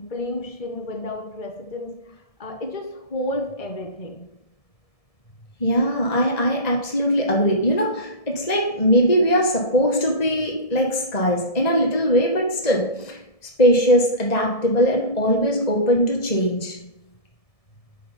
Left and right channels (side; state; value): right; late; 1.7 ms